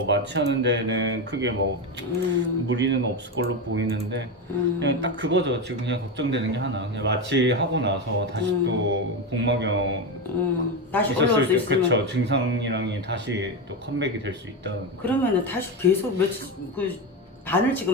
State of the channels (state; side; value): normal; both; correlation 0.14